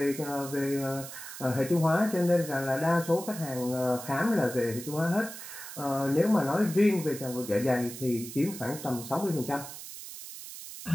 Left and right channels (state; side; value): noise; right; hiss, 11 dB below the sound